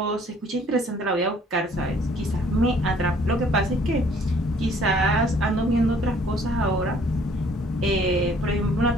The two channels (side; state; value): both; normal; correlation 0.59